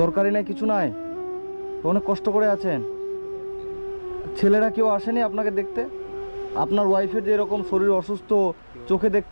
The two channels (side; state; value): both; inverted; correlation -1.00